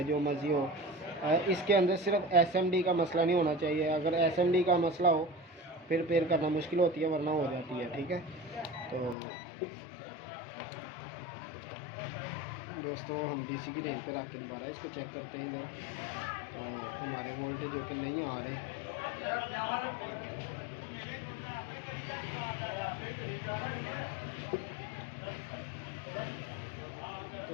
जो मर्ज़ी हो। इसके अंदर सिर्फ एसएमडी का मसला नहीं होना चाहिए। अगर एसएमडी का मसला हो फिर रिपेयर करना मुश्किल होती है, वरना हो जाती है। ठीक है, तो दोस्तों हम डीसी की रेंज पर रख के दोबारा इसको चेक करते हैं इधर। तो हमारे वोल्टेज जो कि नहीं आ रहे।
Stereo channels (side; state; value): right; drops out; at 9.2 s